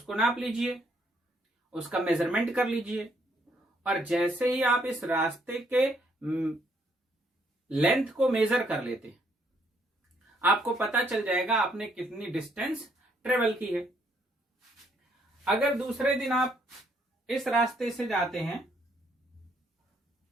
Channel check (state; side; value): normal; both; correlation 0.70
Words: नाप लीजिए, उसका मेजरमेंट कर लीजिए और जैसे ही आप इस रास्ते के लेंथ को मेजर कर लेते हैं आपको पता चल जाएगा आपने कितनी डिस्टेंस ट्रेवल की है। अगर दूसरे दिन आप इस रास्ते से जाते हैं,